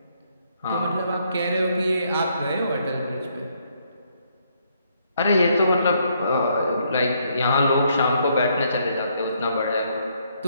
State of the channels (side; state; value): both; inverted; correlation -0.71